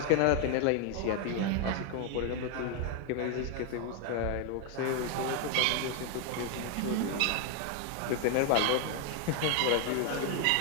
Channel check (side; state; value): both; different; correlation 0.00